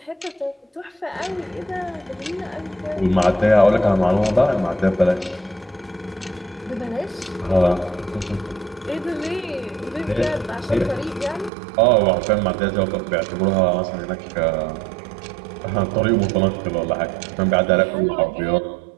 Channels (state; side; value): drops out; left; at 11.5 s